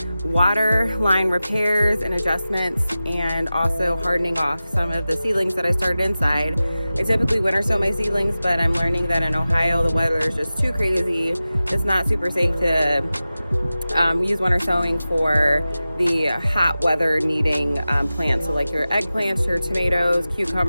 water line repairs and adjustments, and also hardening off some of the seedlings that I started inside. I typically winter sow my seedlings, but I'm learning that in Ohio the weather is just too crazy. It's not super safe to use winter sowing for the hot weather needing plants. So like your eggplants, your tomatoes,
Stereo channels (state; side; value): inverted; both; correlation -0.95